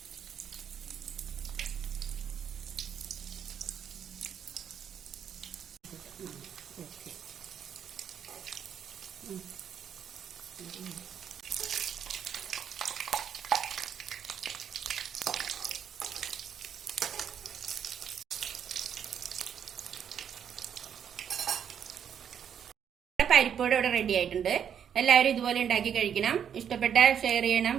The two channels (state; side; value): quieter; left; 8.5 dB